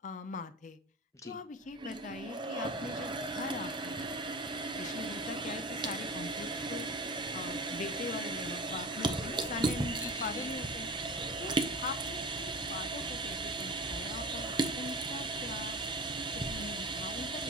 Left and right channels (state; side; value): normal; both; correlation 0.32